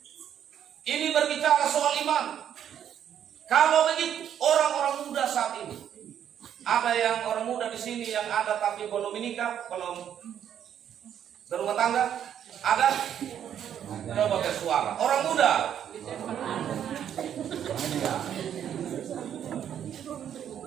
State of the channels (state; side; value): quieter; left; 9.5 dB